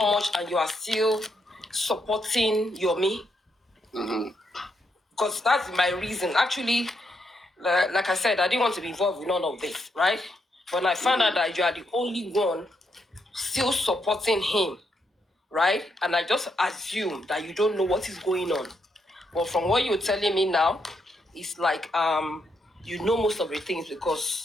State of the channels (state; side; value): normal; both; correlation 0.79